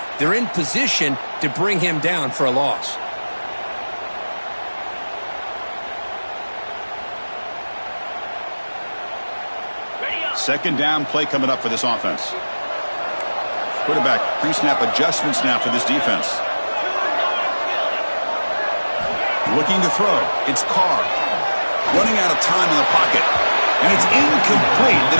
they're in position to bring him down for a loss. Second down play coming up for this offense. Quarterback pre-snap adjustments now for this defense. Looking to throw. It's Carr. Running out of time in the pocket. And it's incomplete. The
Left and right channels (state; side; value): inverted; both; correlation -1.00